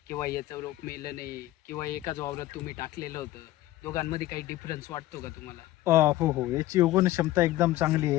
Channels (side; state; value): right; quieter; 15.9 dB